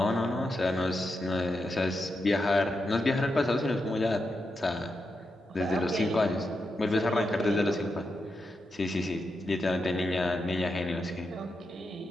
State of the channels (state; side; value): normal; both; correlation 0.86